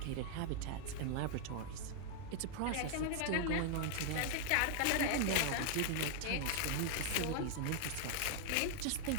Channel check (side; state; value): both; different; correlation 0.00